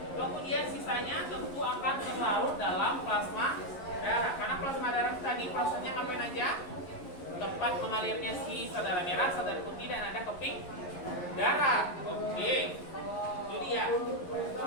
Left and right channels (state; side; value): late; right; 11 ms